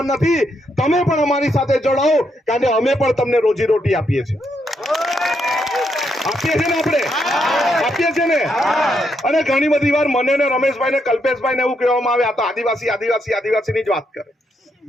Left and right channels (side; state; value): both; normal; correlation 0.78